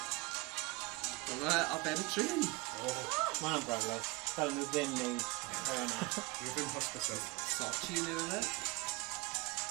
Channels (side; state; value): left; quieter; 24.9 dB